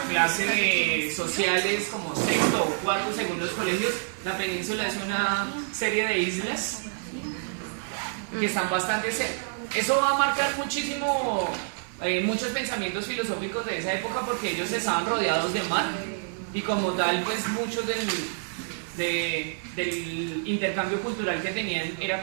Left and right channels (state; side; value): silent; left; digital silence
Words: clase de sociales como sexto o cuarto según los colegios, la península es una serie de islas que están bastante cerca. Eso va a marcar muchísimo muchos pensamientos filosóficos de esa época porque ellos estaban rodeados de mar y como tal pues muchos del intercambio cultural que tenían era